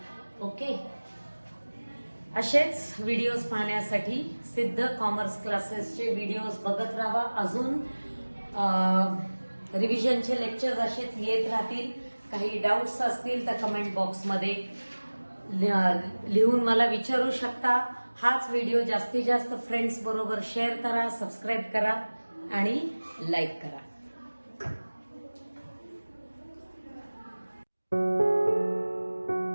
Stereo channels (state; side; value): inverted; both; correlation -1.00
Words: ओके, असेच व्हिडिओज पाहण्यासाठी सिद्ध कॉमर्स क्लासेसचे व्हिडिओज बघत राहा. अजून रिव्हिजनचे लेक्चर्स असेच येत राहतील. काही डाऊट्स असतील तर कमेंट बॉक्समध्ये लिहून मला विचारू शकता. हाच व्हिडिओ जास्तीत जास्त फ्रेंड्स बरोबर शेअर करा, सबस्क्राईब करा आणि लाईक करा.